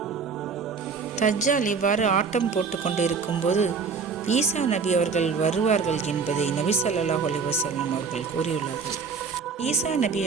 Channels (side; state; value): left; quieter; 5.4 dB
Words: தஜ்ஜால் இவ்வாறு ஆட்டம் போட்டு கொண்டு இருக்கும்போது ஈசா நபி அவர்கள் வருவார்கள் என்பதை நபி ஸல்லல்லாஹு அலைஹி வஸல்லம் அவர்கள் கூறியுள்ளார்கள். ஈசா நபி